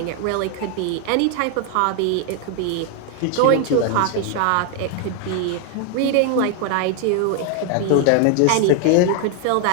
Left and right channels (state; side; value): different; both; correlation 0.00